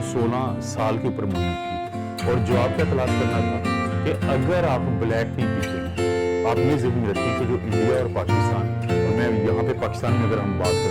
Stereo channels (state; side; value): identical; both; correlation 1.00